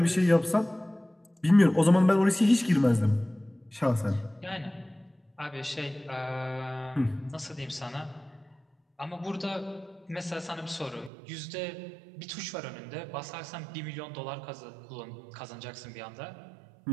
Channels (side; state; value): left; drops out; at 11.1 s